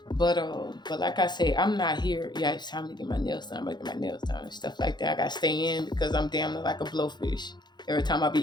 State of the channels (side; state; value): right; late; 0.21 ms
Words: But like I say, I'm not here. Yeah, it's time to get my nails done. I'm gonna get my nails done and stuff like that. I gotta stay in because I'm damn near like a blowfish. Every time I